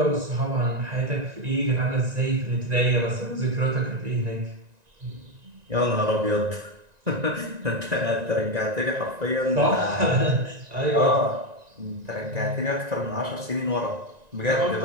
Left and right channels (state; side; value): late; left; 1.9 ms